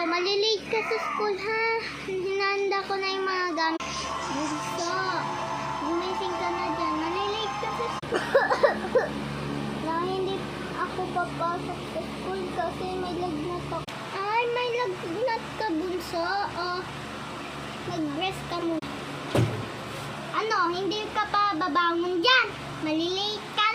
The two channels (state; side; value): identical; both; correlation 1.00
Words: ka sa school, ha? Hinanda ko na yung mga gamit. Bunso, gumising ka na dyan. Malilate ka sa school. Na hindi ako papasok sa school kasi may lagnat ako. Ay, may lagnat ka, bunso. Oh, mag-rest ka muna. Ano, hindi ka pa babangon dyan? Malilate ka